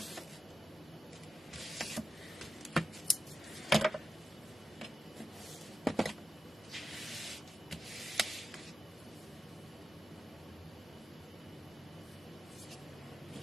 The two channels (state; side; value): normal; both; correlation 0.91